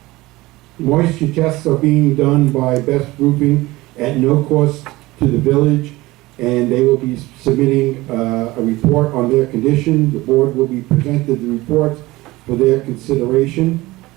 Moisture tests are being done by Best Roofing at no cost to the village, and they will be submitting a report on their condition. The board will be presented the reports for their consideration.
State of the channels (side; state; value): left; quieter; 19.7 dB